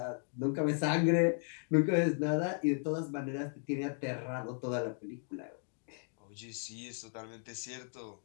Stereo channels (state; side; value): silent; right; 54 dB below the other